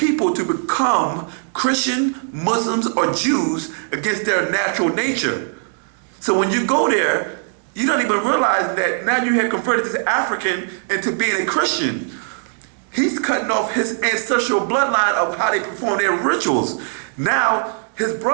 to become Christian, Muslims, or Jews against their natural nature. So when you go there, you don't even realize that now you have converted this African into being a Christian. He's cutting off his ancestral bloodline of how they perform their rituals. Now, his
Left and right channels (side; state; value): left; silent; digital silence